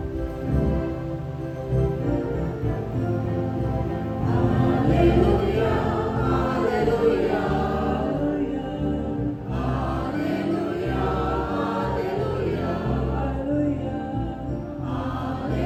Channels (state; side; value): identical; both; correlation 1.00